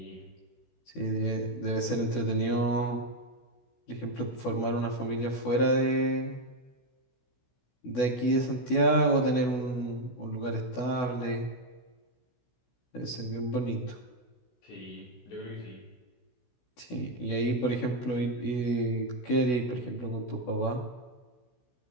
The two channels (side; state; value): right; late; 16 ms